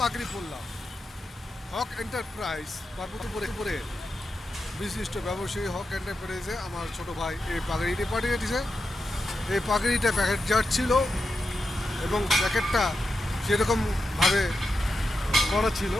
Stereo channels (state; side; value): normal; both; correlation 0.89